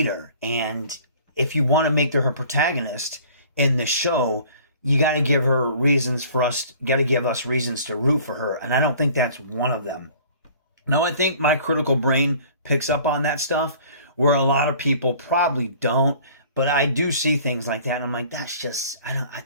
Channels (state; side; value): inverted; both; correlation -0.50